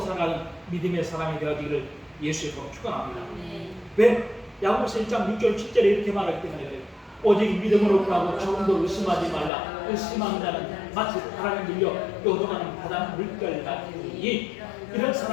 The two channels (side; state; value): right; drops out; at 9.5 s